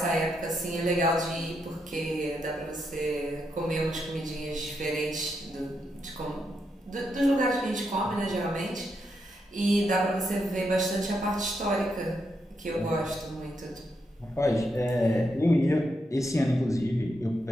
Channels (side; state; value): both; normal; correlation 0.81